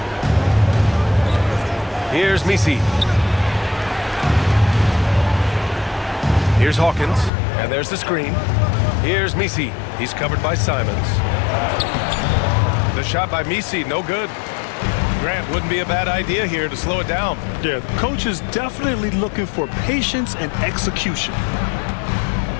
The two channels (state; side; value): drops out; right; at 7.3 s